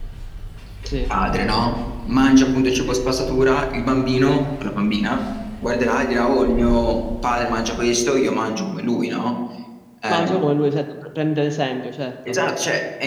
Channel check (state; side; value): identical; both; correlation 1.00